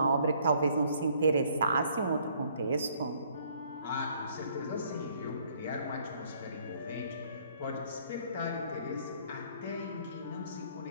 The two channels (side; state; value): both; inverted; correlation -0.63